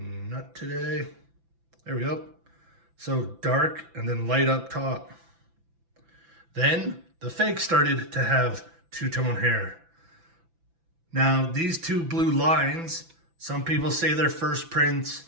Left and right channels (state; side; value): late; left; 6.0 ms